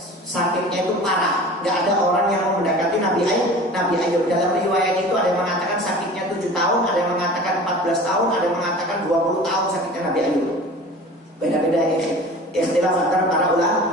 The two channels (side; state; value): both; normal; correlation 0.40